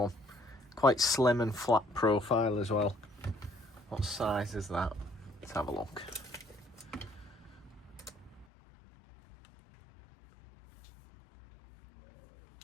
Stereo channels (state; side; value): drops out; right; at 8.5 s